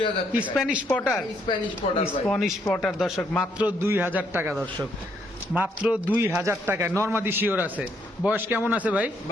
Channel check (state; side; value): normal; both; correlation 0.72